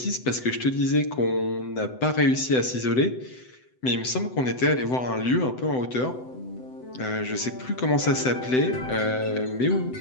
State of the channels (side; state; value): right; late; 7.9 ms